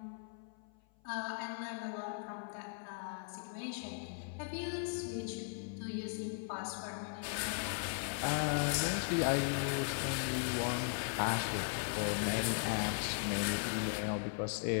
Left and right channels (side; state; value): right; silent; 52 dB below the other